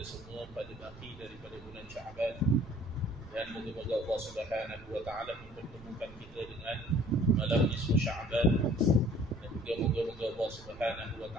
semua pada baki daripada bulan Sya'ban. Dan moga-moga Allah Subhanahu wa taala mempertemukan kita dengan malam nisfu Sya'ban. Dan juga moga-moga Allah Subhanahu wa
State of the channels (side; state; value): right; noise; rumble, 19 dB below the sound